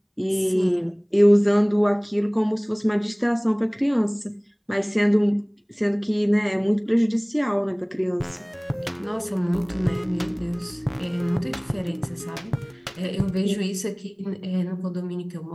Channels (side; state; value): both; identical; correlation 1.00